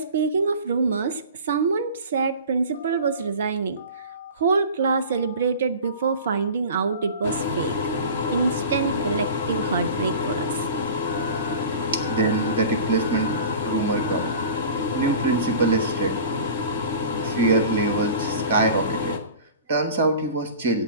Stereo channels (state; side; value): inverted; both; correlation -0.39